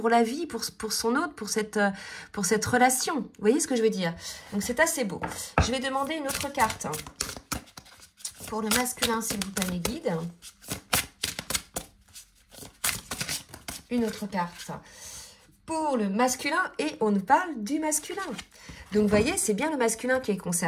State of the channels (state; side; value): identical; both; correlation 1.00